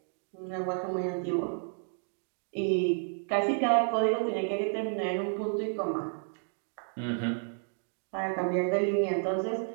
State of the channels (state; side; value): silent; left; 57 dB below the other